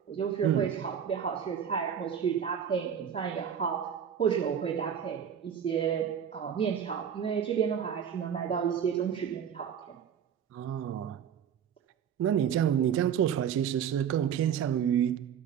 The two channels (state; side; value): quieter; left; 8.4 dB